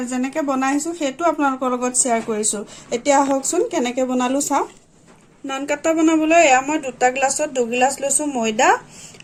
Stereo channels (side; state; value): both; identical; correlation 1.00